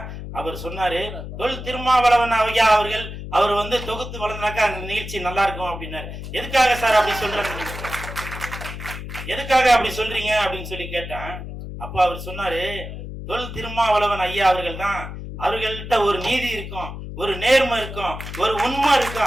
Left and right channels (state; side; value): noise; left; hum, 9 dB below the sound